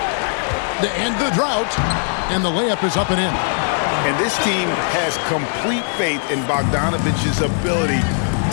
To end the drought. And the layup is up and in. And this team has complete faith in Bogdanovich's ability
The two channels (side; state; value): right; silent; 66 dB below the other